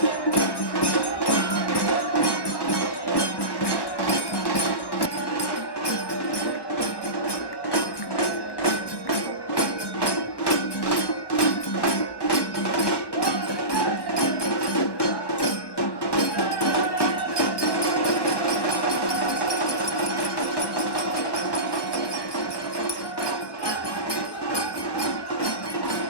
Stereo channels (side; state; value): right; late; 1.1 ms